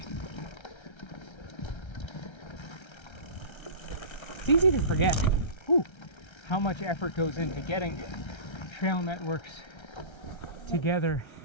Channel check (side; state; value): right; late; 1.3 ms